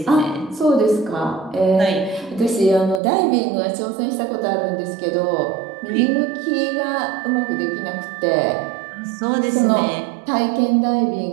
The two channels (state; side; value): drops out; left; at 3.0 s